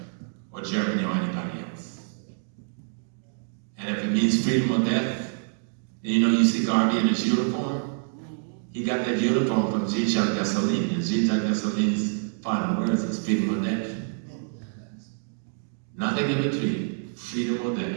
or Germany, or anybody else. And if it means freedom or death, then you see Garvey in his uniform. He got that uniform from Jean-Jacques Dessalines, and Jean-Jacques Dessalines' final words is freedom or death. Nothing in between, freedom or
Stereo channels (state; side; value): silent; left; digital silence